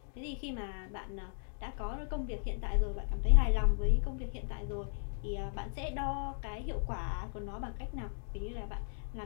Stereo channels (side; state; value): right; silent; digital silence